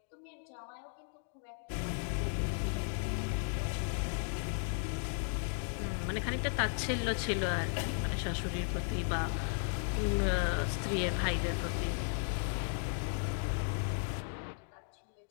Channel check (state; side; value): silent; right; 54 dB below the other